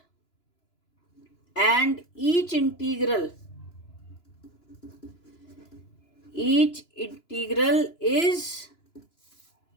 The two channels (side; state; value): right; late; 2.9 ms